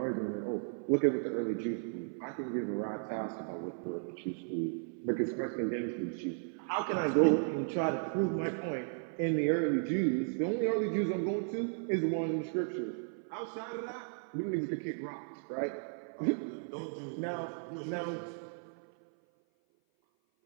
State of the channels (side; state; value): left; silent; 54 dB below the other